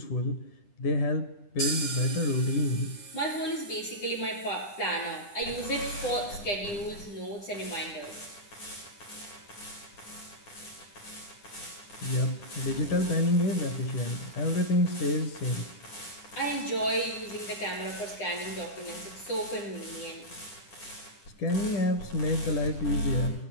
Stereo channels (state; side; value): late; right; 9.9 ms